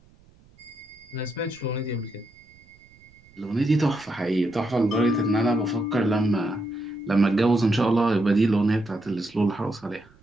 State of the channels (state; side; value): noise; right; rumble, 29 dB below the sound